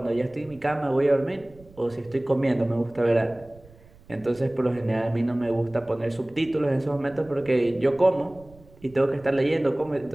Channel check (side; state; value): right; noise; rumble, 25 dB below the sound